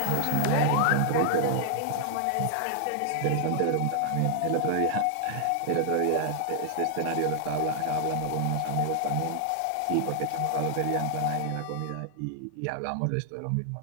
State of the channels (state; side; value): different; both; correlation 0.00